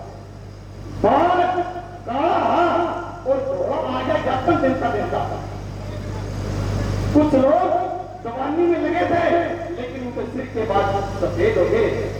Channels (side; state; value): both; identical; correlation 1.00